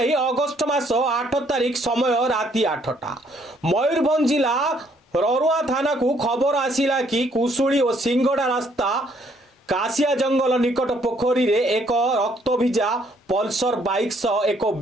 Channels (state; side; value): normal; both; correlation 0.67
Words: अगस्ट मास 8 तारिख समय राति 8टा मयूरभंज जिला ररुआ थाना को खबर आसिला कि कुशुड़ी और सिंगड़ा रास्ता कासिया जंगल निकट पोखरी रे एक रक्तभिजा पल्सर बाइक सह एक